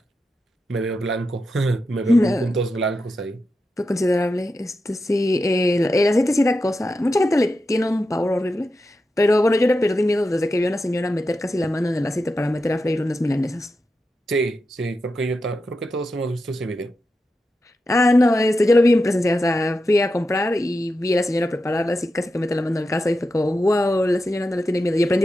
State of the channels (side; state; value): both; normal; correlation 0.89